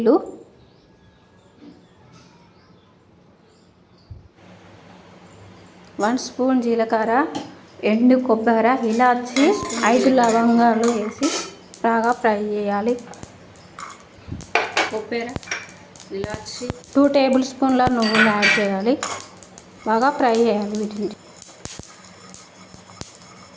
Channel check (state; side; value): identical; both; correlation 1.00